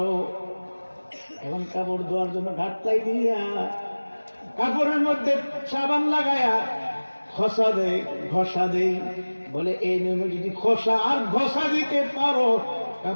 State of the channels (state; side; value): inverted; both; correlation -1.00